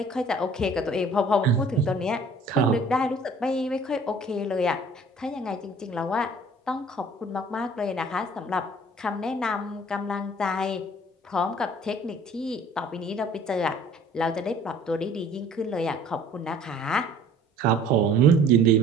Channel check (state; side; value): normal; both; correlation 0.52